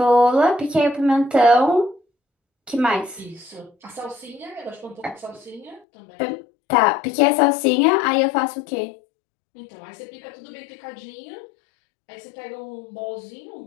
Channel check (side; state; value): right; drops out; at 5.8 s